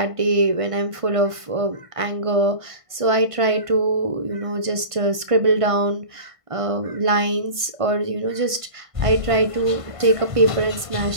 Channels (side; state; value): left; late; 1.5 ms